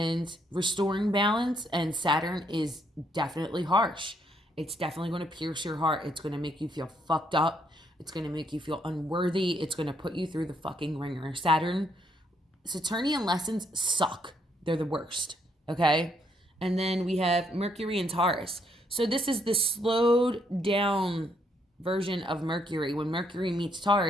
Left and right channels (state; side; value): normal; both; correlation 0.72